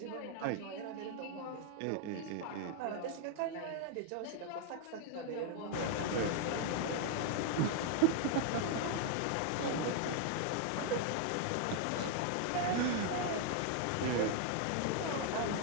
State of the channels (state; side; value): different; both; correlation 0.00